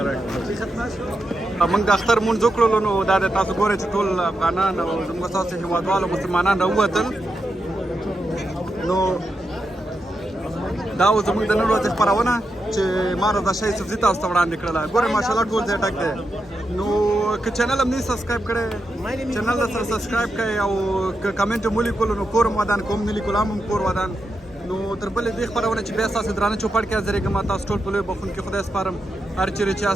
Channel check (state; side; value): normal; both; correlation 0.86